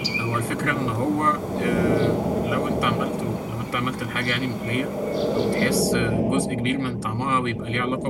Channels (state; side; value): identical; both; correlation 1.00